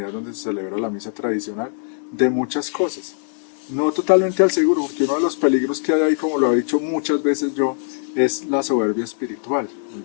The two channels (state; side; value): silent; right; digital silence